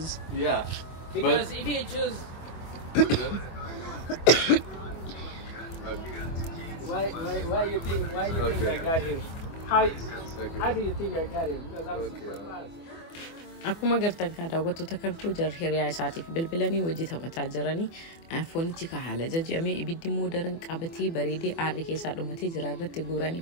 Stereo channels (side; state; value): right; late; 24 ms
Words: Yeah. Because if you choose, But why you think I Okay. got him? How okay. do you think I got him? Because I'm Okay. super fast. Akkuma gartan kan daawwattoota kan koo jar hiriyaa isaatiif bilbilanii wajji taphataa jiranii foonichi ka haala jajjamee ibiddi immoo daran qabatee bareedee aarri keessaa dhumatee jira irratti guuranii